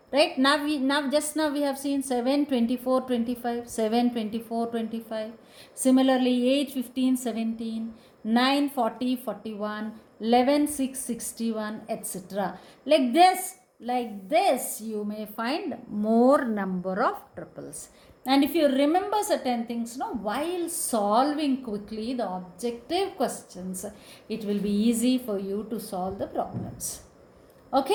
Right? Now we have seen 7, 24, 25. 7, 24, 25. Similarly 8, 15, 17. 9, 40, 41. 11, 6, 61, etc. Like this you may find more number of triples. And if you remember certain things, while solving quickly the objective questions, it will be easy for you to solve the problems.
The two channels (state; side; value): identical; both; correlation 1.00